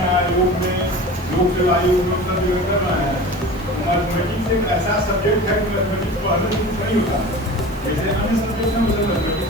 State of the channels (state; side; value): noise; right; hiss, 23 dB below the sound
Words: आए, योग में, योग से आयोग में सब जगह कर रहे हैं। मैथमेटिक्स एक ऐसा सब्जेक्ट है कि मैथमेटिक्स पढ़ने से कुछ नहीं होता, जैसे अन्य सब्जेक्ट हैं मतलब